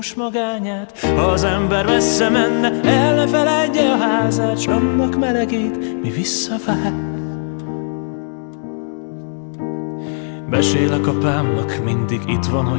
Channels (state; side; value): silent; right; digital silence